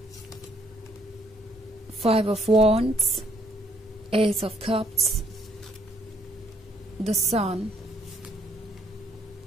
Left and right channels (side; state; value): both; normal; correlation 0.68